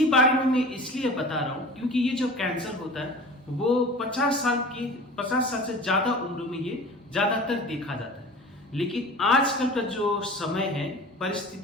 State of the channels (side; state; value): both; normal; correlation 0.39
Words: बारे में मैं इसलिए बता रहा हूं क्योंकि ये जो कैंसर होता है वो 50 साल से ज्यादा उम्र में ये ज्यादातर देखा जाता है। लेकिन आजकल का जो समय है